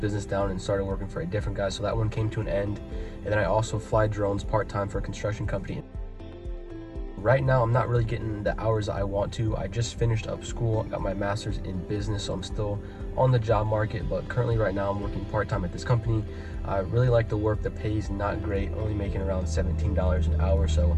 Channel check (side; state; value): both; identical; correlation 1.00